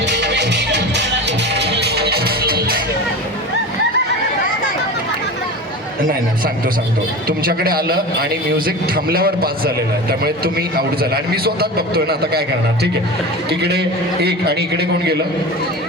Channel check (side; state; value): both; normal; correlation 0.29